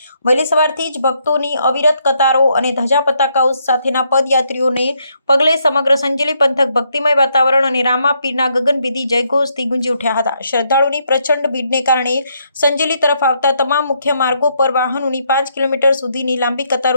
વહેલી સવારથી જ ભક્તોની અવિરત કતારો અને ધજા પતાકાઓ સાથેના પદયાત્રીઓને પગલે સમગ્ર સંજેલી પંથક ભક્તિમય વાતાવરણ અને રામાપીરના ગગનભેદી જયઘોષથી ગુંજી ઉઠ્યા હતા। શ્રદ્ધાળુની પ્રચંડ ભીડને કારણે સંજેલી તરફ આવતા તમામ મુખ્ય માર્ગો પર વાહનોની 5 કિલોમીટર સુધીની લાંબી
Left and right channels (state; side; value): inverted; both; correlation -0.75